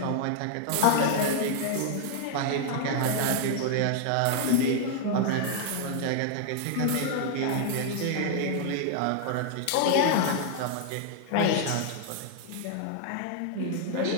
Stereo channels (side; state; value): both; different; correlation 0.00